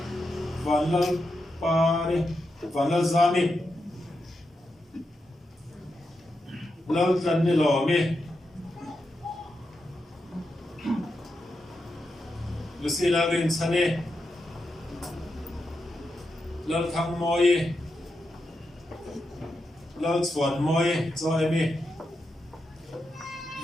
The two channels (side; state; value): both; normal; correlation 0.87